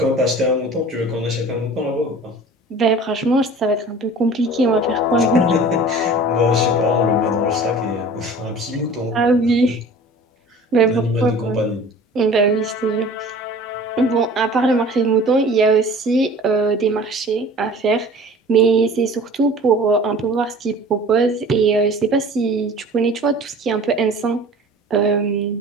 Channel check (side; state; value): both; normal; correlation 0.43